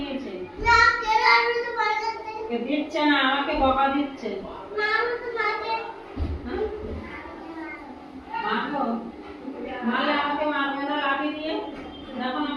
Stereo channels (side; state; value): both; identical; correlation 1.00